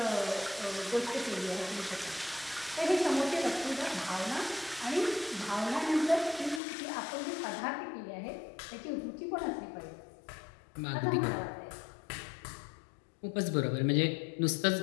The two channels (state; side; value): drops out; right; at 6.6 s